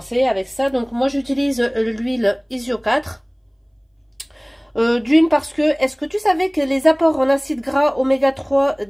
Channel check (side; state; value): both; identical; correlation 1.00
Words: avec ça. Donc moi j'utilise l'huile Isio 4. D'une parce que, est-ce que tu savais que les apports en acides gras oméga 3